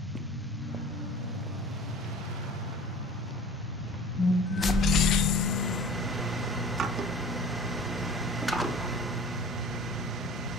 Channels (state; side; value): normal; both; correlation 0.44